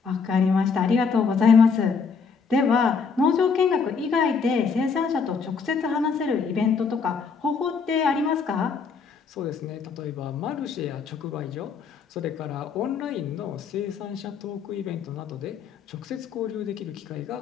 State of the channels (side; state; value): right; quieter; 5.5 dB